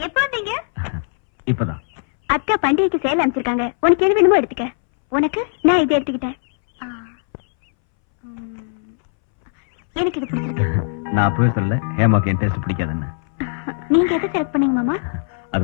எப்ப வந்தீங்க? இப்பதான். அக்கா பண்டிகைக்கு சேலை அமைச்சிருக்காங்க, உனக்கு எது வேணுமோ எடுத்துக்க. உனக்கு நான் இதை எடுத்துக்கிட்டேன். எனக்கு இது பிடிச்சிருக்கு. நான் அப்பவே சொல்லல ஹேமாக்கு என் டேஸ்ட் பிடிக்காதுன்னு. நீங்க எதை செலக்ட் பண்ணீங்க மாமா? அது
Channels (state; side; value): silent; right; 65 dB below the other